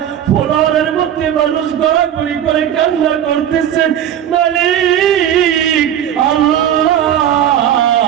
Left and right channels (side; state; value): left; quieter; 10.3 dB